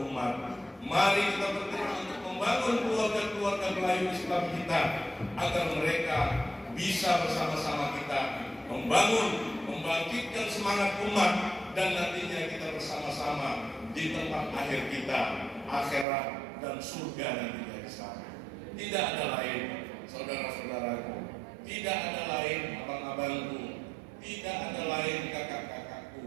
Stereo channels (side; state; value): left; drops out; at 16.1 s